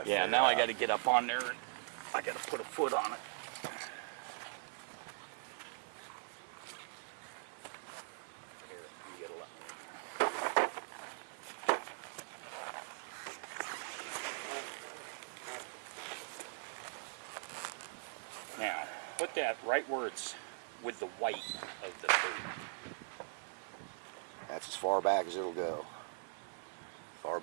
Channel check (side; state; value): left; silent; digital silence